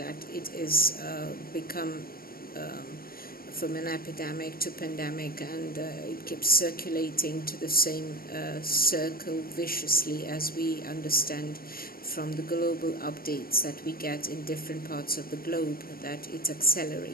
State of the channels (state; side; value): late; right; 0.43 ms